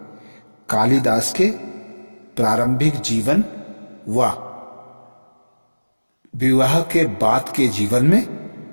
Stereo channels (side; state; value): both; inverted; correlation -1.00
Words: कालिदास के प्रारंभिक जीवन व विवाह के बाद के जीवन में